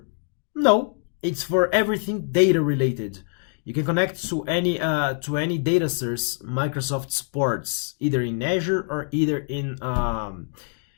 No, it's for everything data related. You can connect to any data source Microsoft supports, either in Azure or either in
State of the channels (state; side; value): silent; right; 62 dB below the other